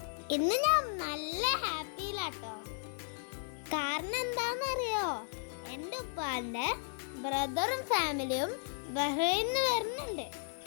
ഇന്ന് ഞാൻ നല്ല ഹാപ്പിയിലാട്ടോ. കാരണം എന്താണെന്നറിയോ? എൻ്റെ ഉപ്പാന്റെ ബ്രദറും ഫാമിലിയും ബഹ്റൈനിൽ വരുന്നുണ്ട്.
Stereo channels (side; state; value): right; silent; digital silence